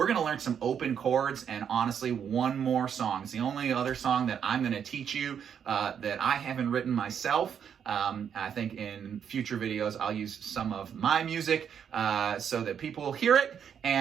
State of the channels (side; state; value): left; quieter; 8.0 dB